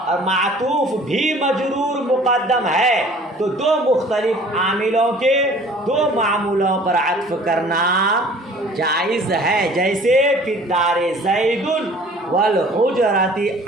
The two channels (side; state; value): both; normal; correlation 0.50